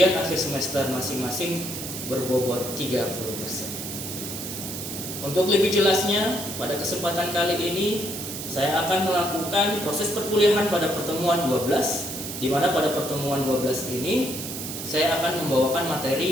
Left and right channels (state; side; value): noise; right; hiss, 7 dB below the sound